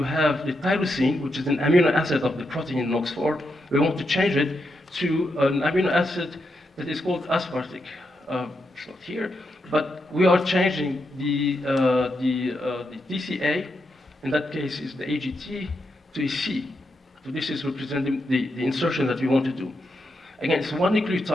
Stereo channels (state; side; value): normal; both; correlation 0.83